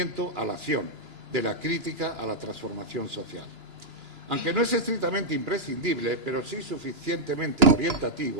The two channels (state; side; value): late; left; 2.9 ms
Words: a la acción, de la crítica a la transformación social. Aunque no es estrictamente imprescindible, pero sí suficientemente